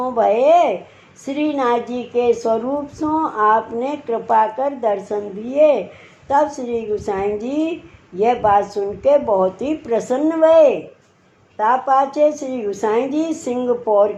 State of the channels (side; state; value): both; identical; correlation 1.00